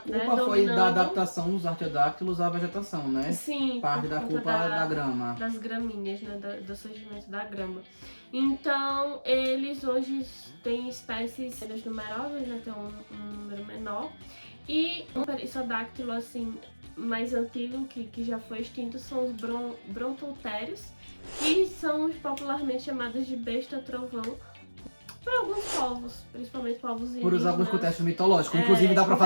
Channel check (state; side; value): inverted; both; correlation -1.00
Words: foi da adaptação dos artiodáctilos à vegetação, né? Sim. Parte da culpa da grama. Das graminhas, né? Do surgimento da grama. Então, eles hoje têm espécies menos numerosas, né? Tem um número menor. E um perissodactilo, assim, mais antigo, que já foi extinto, são os brontotérios, que são popularmente chamados de besta-trovão por alguns povos, principalmente povos indígenas. Por alguns contextos mitológicos. Inclusive dá pra